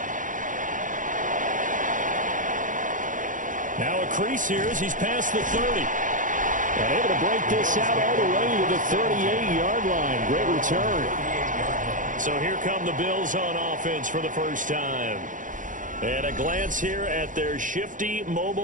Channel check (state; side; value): late; left; 0.38 ms